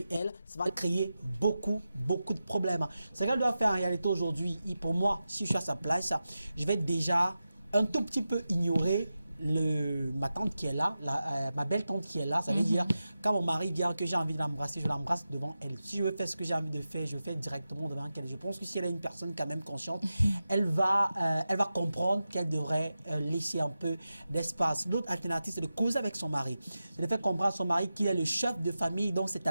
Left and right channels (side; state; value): both; inverted; correlation -0.92